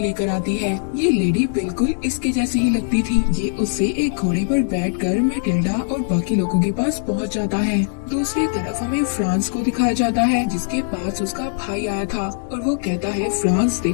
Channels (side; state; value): right; silent; digital silence